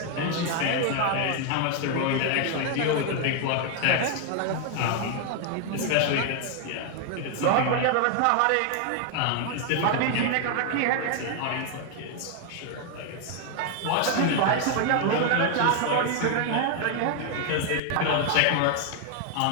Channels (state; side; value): different; both; correlation 0.00